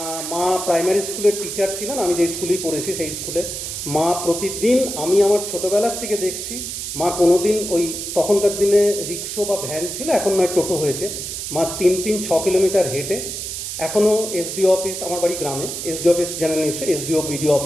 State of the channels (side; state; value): right; noise; hiss, 6 dB below the sound